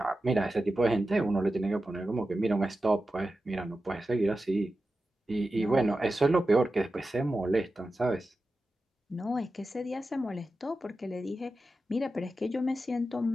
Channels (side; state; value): both; normal; correlation 0.92